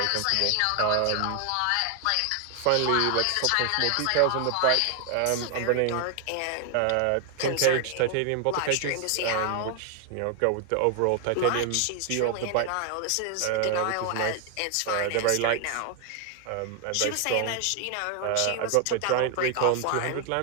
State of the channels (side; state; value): both; different; correlation 0.00